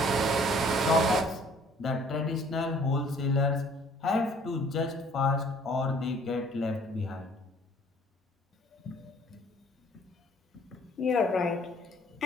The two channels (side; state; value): both; normal; correlation 0.57